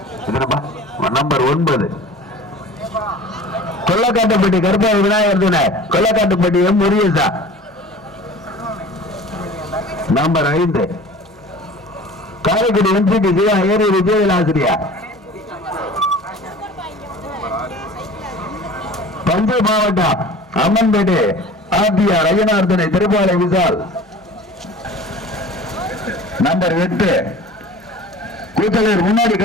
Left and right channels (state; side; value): normal; both; correlation 0.42